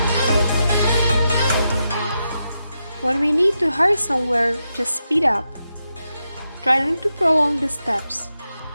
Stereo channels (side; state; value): both; inverted; correlation -0.86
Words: When we need to hurry somewhere, just speed up. Try not to prolong the steps.